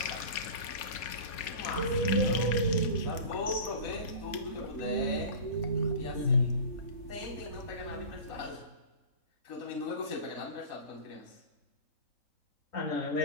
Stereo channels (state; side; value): late; right; 4.2 ms